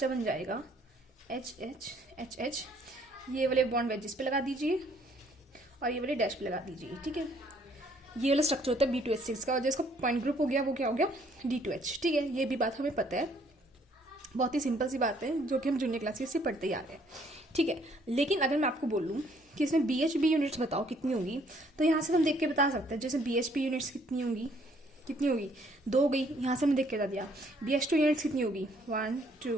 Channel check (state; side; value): normal; both; correlation 0.64